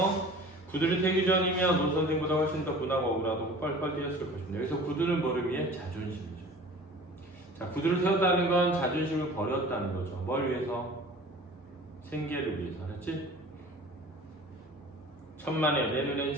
구두를 태기 전이면 오 선생보다 훨씬 더 분하고 억울하고 뻘뻘 뛰었을 것입니다. 여기서 구두는 뭐를 위해? 자존심이죠. 자, 구두를 세웠다는 건 자존심을 버렸다는 거죠. 뭘 위해서? 생계를 위해서. 알았지? 천만에 내 눈엔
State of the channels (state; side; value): normal; both; correlation 0.43